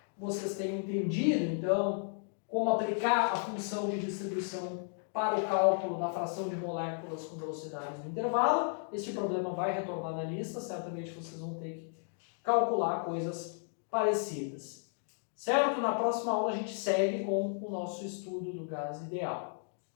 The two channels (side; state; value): right; silent; 55 dB below the other